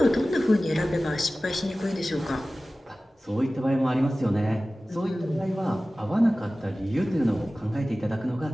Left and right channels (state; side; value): normal; both; correlation 0.97